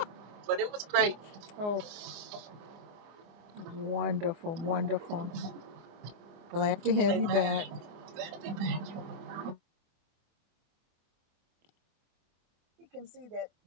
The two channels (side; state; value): left; late; 25 ms